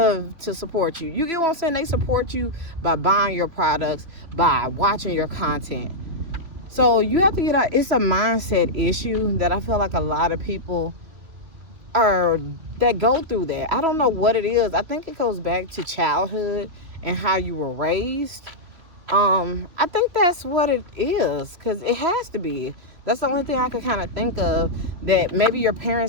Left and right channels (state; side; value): late; left; 3.0 ms